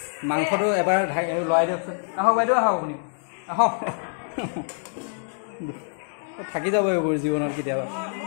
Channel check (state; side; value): silent; right; digital silence